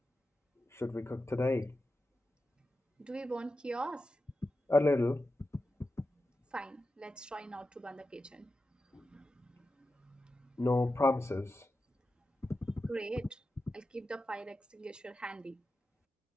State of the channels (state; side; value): normal; both; correlation 0.91